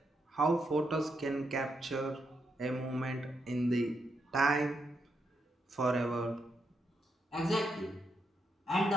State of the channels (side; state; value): both; normal; correlation 0.81